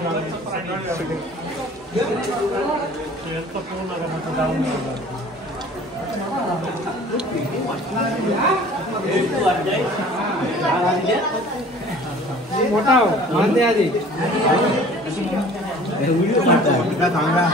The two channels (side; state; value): both; normal; correlation 0.48